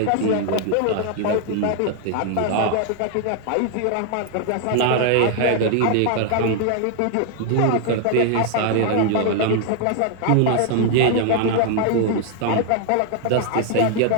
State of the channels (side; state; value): both; different; correlation 0.00